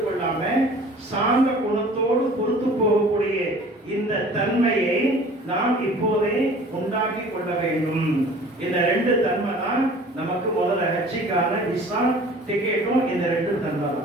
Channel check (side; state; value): both; normal; correlation 0.47